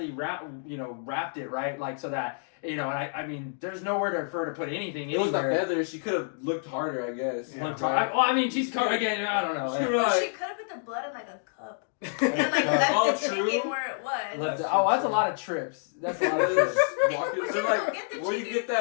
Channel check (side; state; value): right; silent; digital silence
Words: wrapped it, right? Like so that and I mean there's nowhere for her to put anything. It was the feather. She could have looked harder, I guess. Yeah, I mean she's covered again. I don't know. She could have put the blood in like a cup and like left the chicken where it was. That's a lot of trips. That's a lot of trips. Where you get